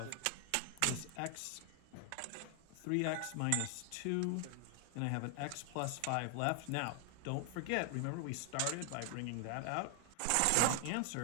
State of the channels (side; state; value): both; different; correlation 0.00